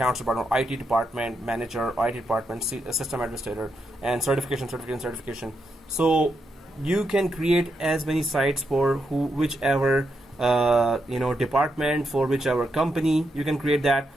department, IT department manager, IT department, system administrator, and certification. So you can create as many sites for whichever department, for whichever company. You can create that.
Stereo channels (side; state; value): both; normal; correlation 0.83